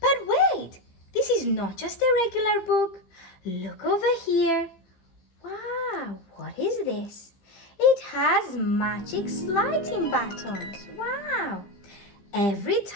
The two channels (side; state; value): right; late; 15 ms